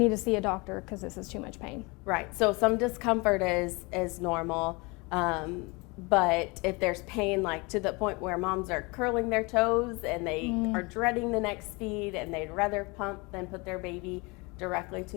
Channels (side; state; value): right; quieter; 27.1 dB